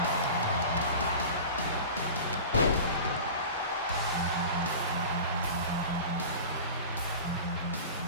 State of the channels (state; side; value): inverted; both; correlation -0.35